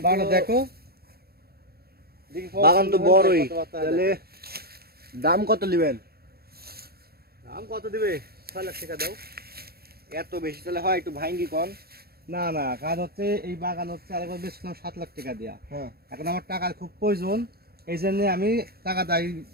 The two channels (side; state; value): left; late; 0.45 ms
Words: বাগান দেখো বাগান তো বড়ই। তাহলে দাম কত নেবেন? দাম কত দিবে? 6 লাখ টাকা দাও। এত বেশি তাহলে হয় একটু ভাঙ্গি কন। না না, কাজ হচ্ছে এই বাগান হচ্ছে আরেকবার বেচলাম 7 লাখ টাকা দিয়া। হ্যাঁ এখন আমার টাকার খুব প্রয়োজন, এই জন্য আমি টাকা দাই